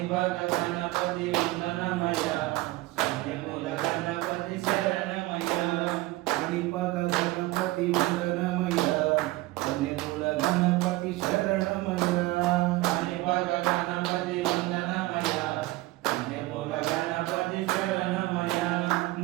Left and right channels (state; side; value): quieter; left; 19.5 dB